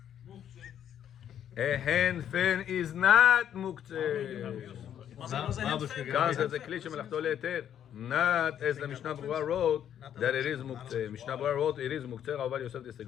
A hand fan is not מוקצה. Was a hand fan? כאן זה כלי שמלאכתו להיתר. Not as the Mishnah Berurah wrote that it is מוקצה. Mishnah Berurah wrote it is מוקצה. Rabbi Yosef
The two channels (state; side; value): quieter; right; 9.8 dB